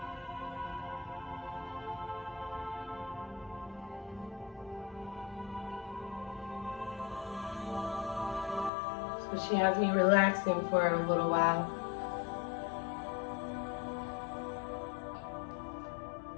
but she has me relaxing for a little while.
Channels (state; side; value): drops out; right; at 8.7 s